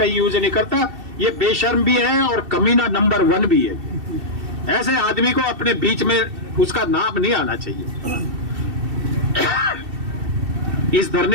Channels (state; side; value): late; left; 2.7 ms